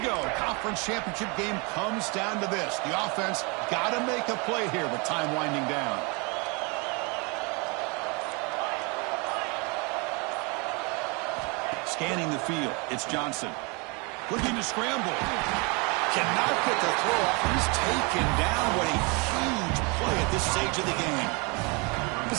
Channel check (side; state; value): left; quieter; 30.4 dB